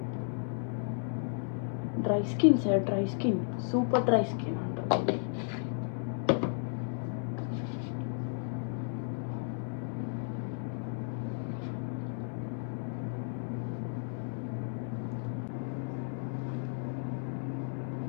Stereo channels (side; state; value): right; silent; 55 dB below the other